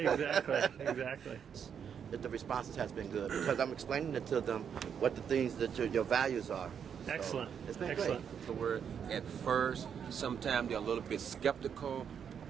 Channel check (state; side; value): quieter; left; 7.7 dB